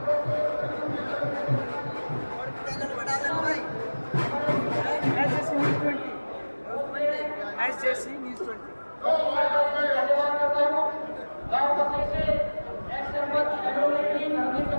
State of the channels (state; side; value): inverted; both; correlation -1.00